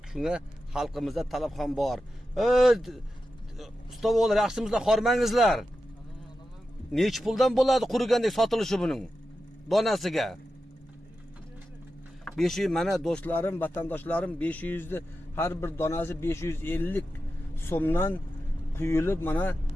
shunga xalqimizda talab ham bor. Ustovolar, yaxshimizlar, xormangizlar. Nech puldan bo'ladi qurigandek sotilishi buning donasiga? 500, mana do'stlarim, vatandoshlarim, 500 ni har bir donasi 550 so'mdan quyilib mana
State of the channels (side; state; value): both; normal; correlation 0.91